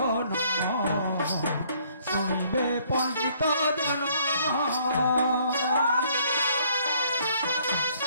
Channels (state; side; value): inverted; both; correlation -0.64